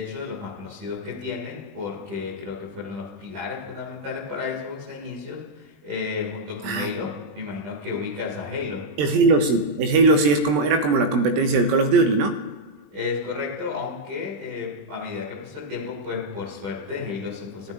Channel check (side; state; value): left; late; 20 ms